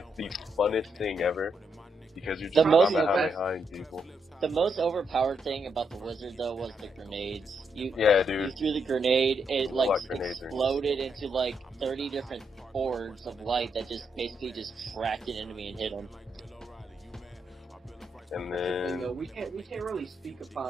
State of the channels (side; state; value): both; normal; correlation 0.79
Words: the funnest thing ever. Because you're just Kamehamehaing people. The most overpowered thing about the wizard though was the grenades. Yeah, dude. You threw the grenade, it exploded into 30 different orbs of light that just basically just tracked an enemy and hit them. And then we can't really speak